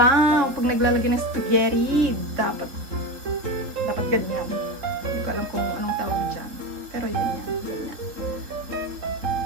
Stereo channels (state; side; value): late; left; 3.9 ms